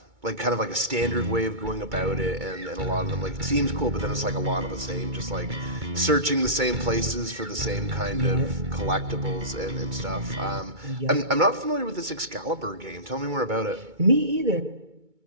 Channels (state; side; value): late; left; 2.2 ms